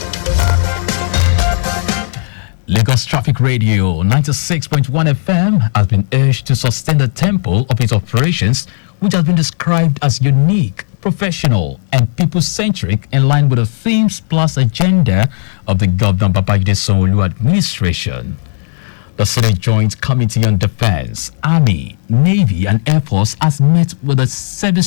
Lagos Traffic Radio 96.1 FM has been urged to sustain the tempo of its operations, which has been described as unique, professional, and people-centric in line with the themes plus agenda of the Governor Babajide Sanwo-Olu administration. The Senate Joint Committee on Defense, Army, Navy, and Air Force has met with the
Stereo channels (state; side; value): silent; right; digital silence